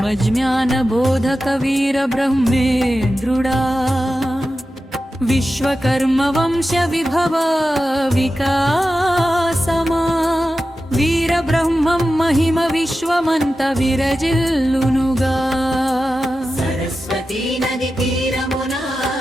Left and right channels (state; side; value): normal; both; correlation 0.92